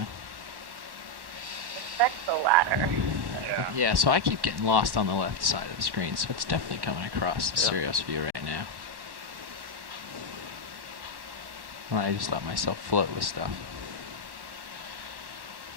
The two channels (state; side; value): late; left; 1.1 ms